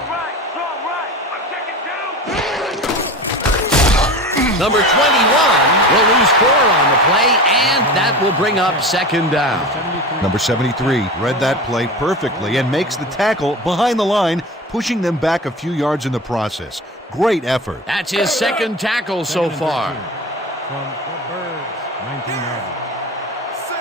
Right, strong right! I'm checking two! Number 21 will lose 4 on the play, and that will bring up second down. Number 73 read that play perfectly and makes the tackle behind the line, pushing them back a few yards in the process. Great effort. That's his second tackle so Second and far. 13 from the Birds, 19-yard line.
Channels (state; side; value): normal; both; correlation 0.31